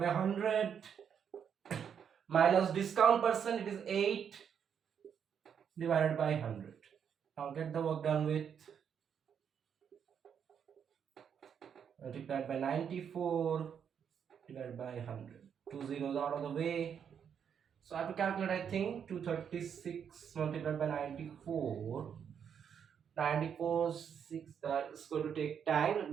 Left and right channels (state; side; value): quieter; left; 7.8 dB